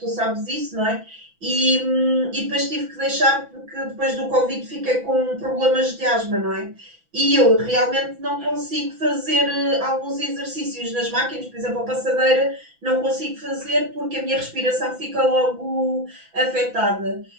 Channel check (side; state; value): left; late; 6.0 ms